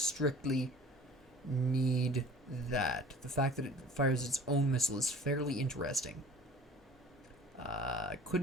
need that. The fact that it fires its own missile is fairly interesting. I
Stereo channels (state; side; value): normal; both; correlation 0.46